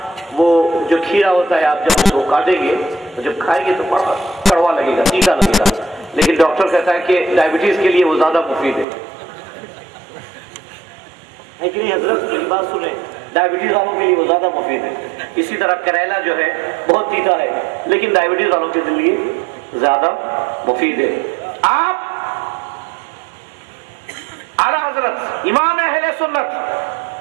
वो जो खीरा होता है आप जब उसको काटेंगे तो जब खाएंगे तो बड़ा कड़वा लगेगा, तीता लगेगा, लेकिन डॉक्टर कहता है कि डायबिटीज के लिए वो ज्यादा मुफीद है कि नहीं हजरत? बात सुने, डायबिटीज वालों के लिए वो ज्यादा मुफीद है। इसी तरह करेला जो है बहुत तीता है लेकिन डायबिटीज वालों के लिए ज्यादा मुफीद है। आप आला हजरत इमाम अहले सुन्नत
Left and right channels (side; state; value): left; drops out; at 8.8 s